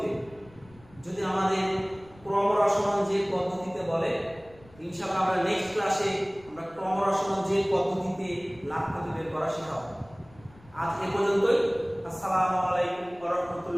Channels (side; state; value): left; noise; rumble, 25 dB below the sound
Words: যদি আমাদের ক্রমরসমান যে পদ্ধতিতে বলে, ইনশাআল্লাহ আমরা নেক্সট ক্লাসে আমরা ক্রমরসমান যে পদ্ধতিতে লাভ ক্ষতি বের করা শেখাবো। আজ এ পর্যন্তই। আসসালামু আলাইকুম ওয়া